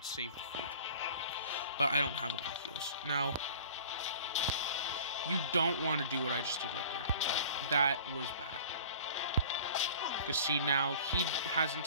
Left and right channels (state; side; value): inverted; both; correlation -0.44